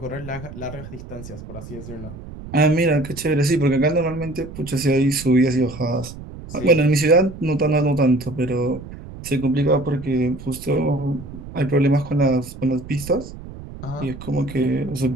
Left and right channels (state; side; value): noise; right; rumble, 13 dB below the sound